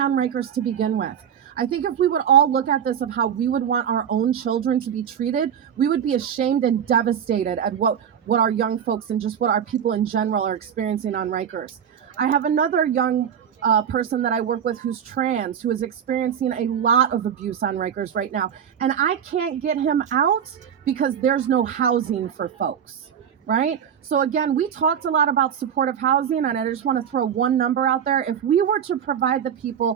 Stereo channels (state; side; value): quieter; left; 8.5 dB